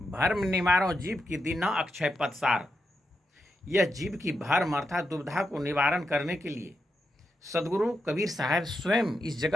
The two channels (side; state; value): both; normal; correlation 0.86